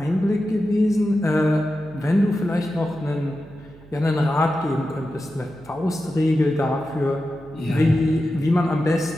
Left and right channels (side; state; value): right; noise; hum, 22 dB below the sound